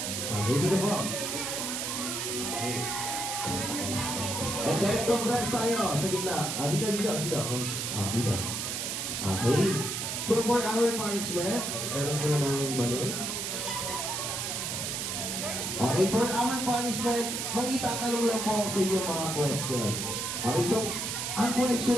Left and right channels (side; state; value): right; noise; hiss, 2 dB below the sound